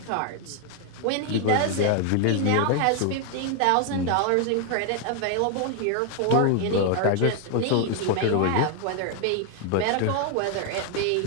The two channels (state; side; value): different; both; correlation 0.00